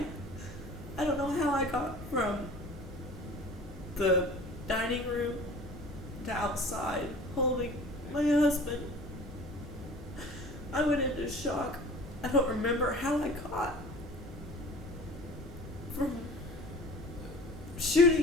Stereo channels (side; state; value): both; normal; correlation 0.44